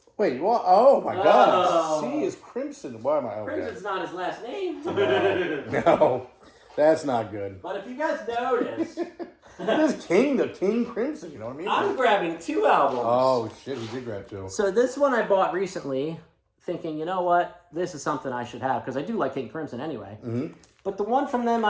Wait, what? Oh, my God. C is Crimson. Why am I... Okay. Crimson's not his last name. No, that's not good. But if you guys notice... It is the King Crimson, you know what I mean? I'm grabbing 2 albums. Oh, shit, he did grab 2. So this one I bought recently, thinking, you know what? This is something I should have, because I do like King Crimson anyway. Mm-hmm. But the one from them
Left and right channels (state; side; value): identical; both; correlation 1.00